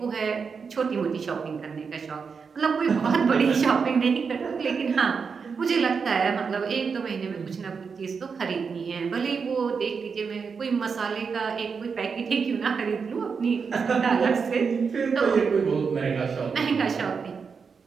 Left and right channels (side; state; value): left; quieter; 5.6 dB